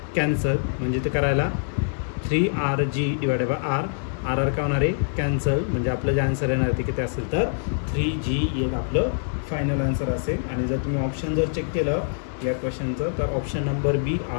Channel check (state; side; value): silent; right; 62 dB below the other